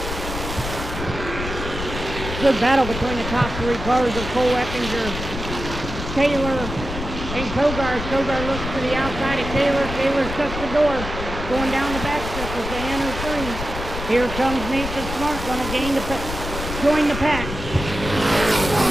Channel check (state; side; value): noise; left; rumble, 7 dB below the sound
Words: Good battle between the top three cars of Cole Eckinger, Kaler, and Kogar. Kogar looks to the outside of Kaler. Kaler shuts the door, going down the back strip as they enter three. Here comes Nathan Smart, going to join the pack.